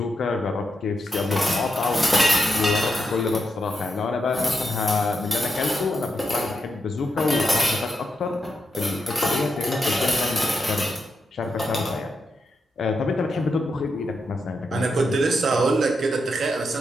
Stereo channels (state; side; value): normal; both; correlation 0.84